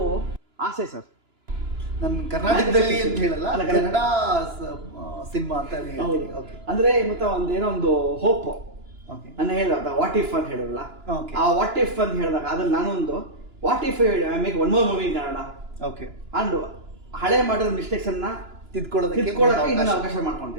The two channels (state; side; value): late; left; 2.9 ms